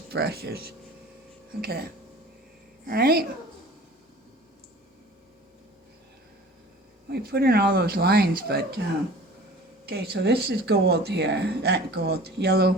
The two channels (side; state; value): both; normal; correlation 0.44